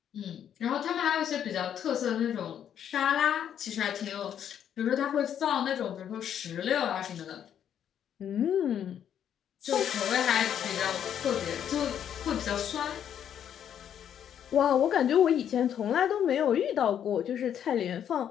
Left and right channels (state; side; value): quieter; right; 9.3 dB